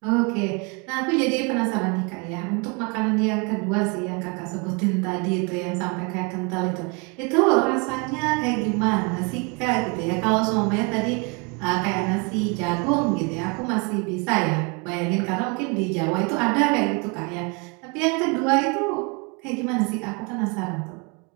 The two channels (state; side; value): quieter; left; 31.8 dB